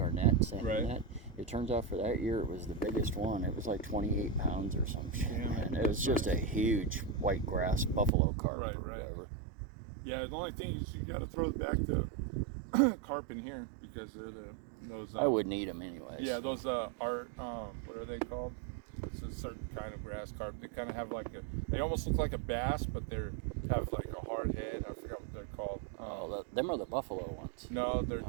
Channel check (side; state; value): left; drops out; at 8.1 s